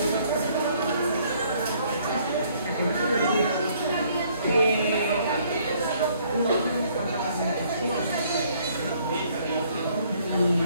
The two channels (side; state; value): both; inverted; correlation -0.63